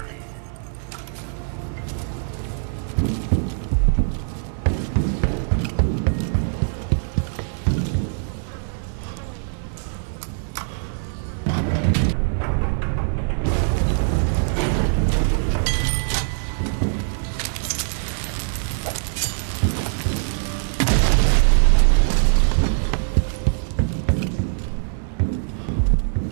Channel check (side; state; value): left; silent; 64 dB below the other